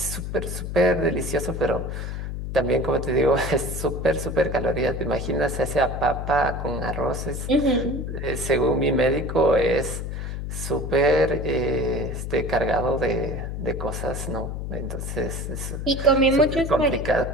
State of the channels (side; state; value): left; noise; hum, 5 dB below the sound